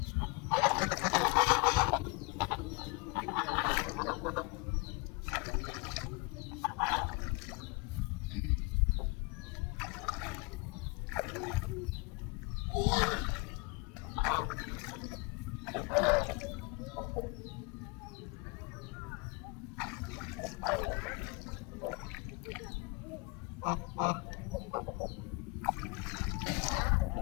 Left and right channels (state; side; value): quieter; right; 28.4 dB